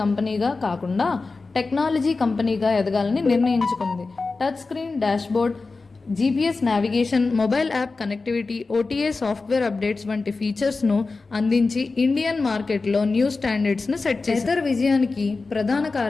కంపెనీగా కాకుండా టెక్నాలజీ కంపెనీగా ఎదగాలని నిర్ణయించుకుంది. Touch screen dashboard, GPS navigation, mobile app connectivity, OTA software updates వంటి ఫీచర్స్ను అందించి ఇండియన్ మార్కెట్లో న్యూ స్టాండర్డ్స్ను సెట్ చేశారు. ఏథర్ విజయానికి ప్రధాన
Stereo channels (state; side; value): quieter; right; 3.9 dB